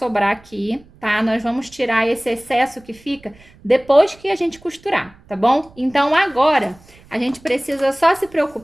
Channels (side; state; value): right; noise; rumble, 26 dB below the sound